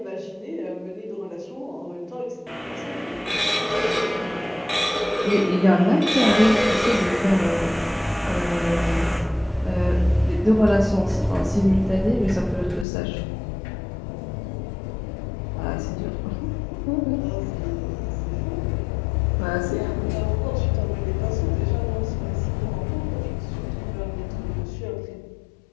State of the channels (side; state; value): right; drops out; at 12.9 s